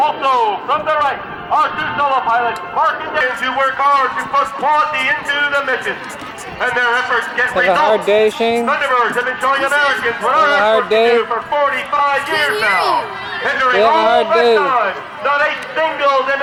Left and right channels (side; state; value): both; identical; correlation 1.00